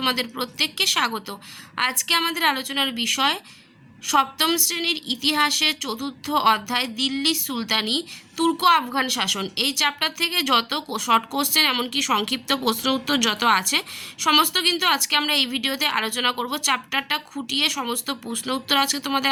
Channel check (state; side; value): identical; both; correlation 1.00